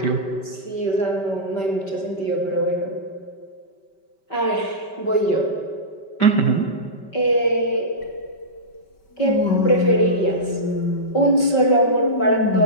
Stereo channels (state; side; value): late; right; 5.2 ms